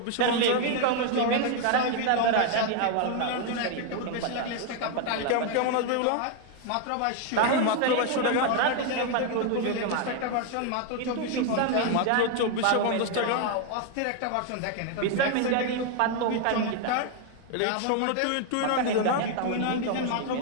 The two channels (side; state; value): both; different; correlation 0.00